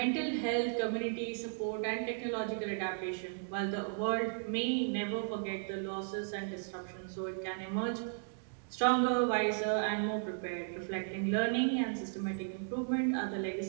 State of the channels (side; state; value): left; silent; digital silence